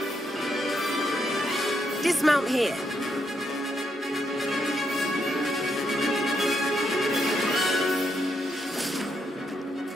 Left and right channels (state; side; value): normal; both; correlation 0.79